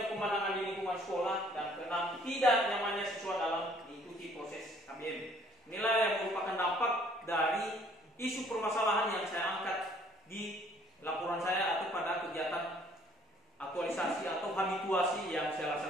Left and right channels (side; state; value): both; normal; correlation 0.60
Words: pemandangan di lingkungan sekolah. Dan keenam, tidak nyamannya siswa dalam mengikuti proses KBM. Inilah yang merupakan dampak dari isu permasalahan yang saya angkat di laporan saya atau pada kegiatan aktualisasi atau habituasi yang saya